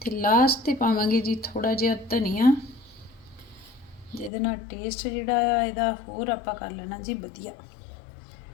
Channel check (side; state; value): right; drops out; at 4.3 s